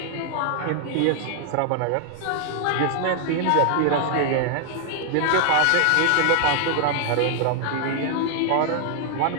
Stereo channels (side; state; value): both; different; correlation 0.00